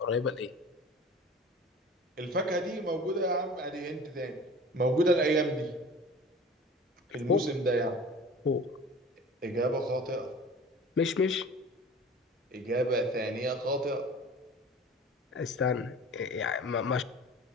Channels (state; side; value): normal; both; correlation 0.41